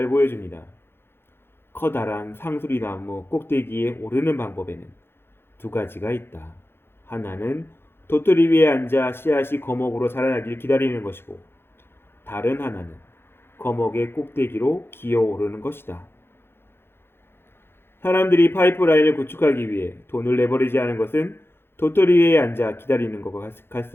보여줍니다. 커다란 상수리나무 꼭대기에 오르는 방법에는 두 가지가 있다. 하나는 도토리 위에 앉아 씨앗이 거목으로 자라나길 기다리는 것이고, 다른 하나는 거목의 꼭대기로 기어오르는 것이다. 사람들이 파이프라인을 구축하기 위해 돈을 레버리지하는 것은 도토리 위에 앉아 기다리는 것과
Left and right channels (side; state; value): right; late; 0.11 ms